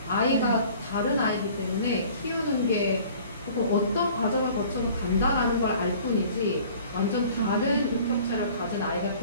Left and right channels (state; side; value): inverted; both; correlation -0.49